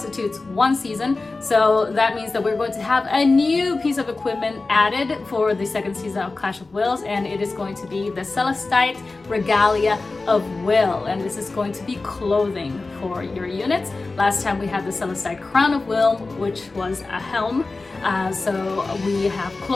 1 season. So that means that we're going to have a new piece of equipment added for the 2nd season of Clash of Wills, and it is going to be the Celestite Regalia of Will, and this is going to be clothing for your units. Last time we had the Celestite Crown of Will, which was a helm. So we have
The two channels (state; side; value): quieter; right; 3.6 dB